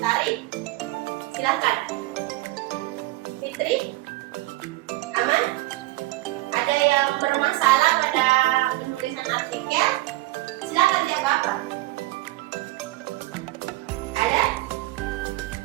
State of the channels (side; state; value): left; quieter; 19.5 dB